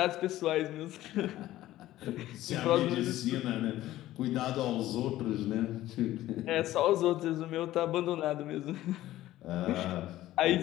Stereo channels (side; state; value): right; quieter; 14.9 dB